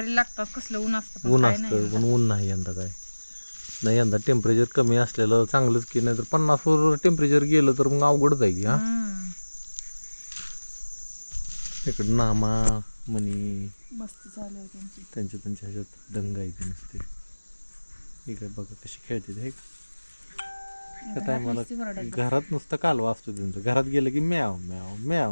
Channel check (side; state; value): both; inverted; correlation -1.00